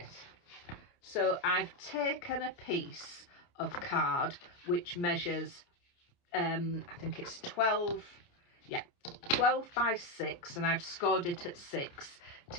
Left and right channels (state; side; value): late; right; 29 ms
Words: So I've taken a piece of card which measures I think it's 12 by 6, and I've scored it at 6